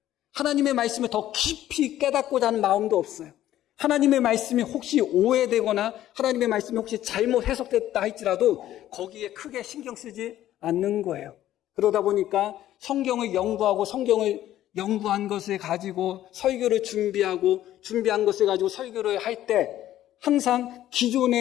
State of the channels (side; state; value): right; quieter; 13.0 dB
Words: 하나님의 말씀을 더 깊이 깨닫고자 하는 마음도 없어요. 하나님의 말씀이 혹시 오해되거나 하나님의 말씀이 혹시 잘못 해석됐다 할지라도 거기에 크게 신경 쓰지 않는 거예요. 그러다 보니까 성경을 연구하고 성경을 연구한 것을 가지고 설교를 준비한 것을 가지고 설교를 할 때 항상